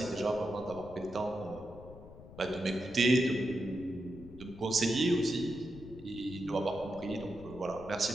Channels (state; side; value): noise; left; rumble, 16 dB below the sound